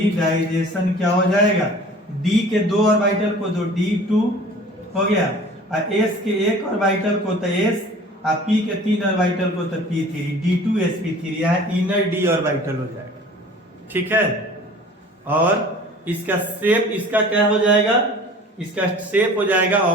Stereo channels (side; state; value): both; normal; correlation 0.45